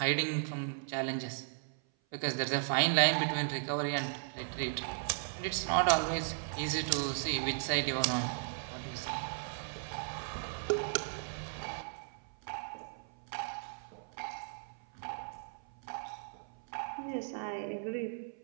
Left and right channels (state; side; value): silent; left; 54 dB below the other